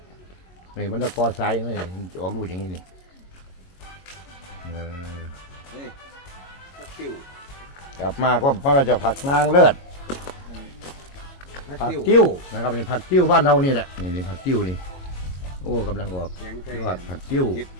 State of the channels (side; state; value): right; late; 22 ms